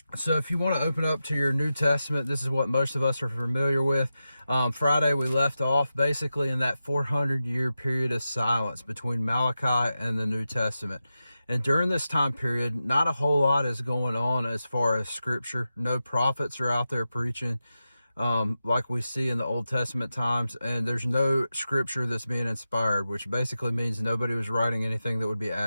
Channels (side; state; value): both; inverted; correlation -0.91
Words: So if you want to open up to your New Testament, this is what most of us are familiar with. Friday we left off basically in that 400-year period of silence between Malachi and the New Testament. And during this time period, not a whole lot is going on as far as scripture. No prophets are out there preaching like we see in the Old Testament times, and there's no scripture that's being inspired, which basically means nobody was writing anything that would be